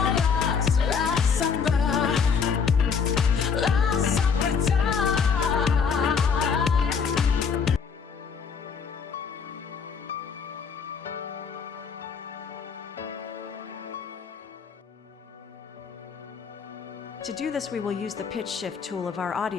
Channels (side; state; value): right; quieter; 6.1 dB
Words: last summer time. To do this, we will use the pitch shift tool of our